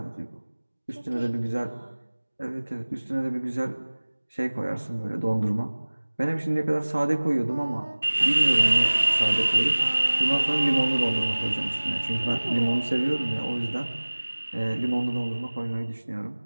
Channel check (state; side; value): inverted; both; correlation -1.00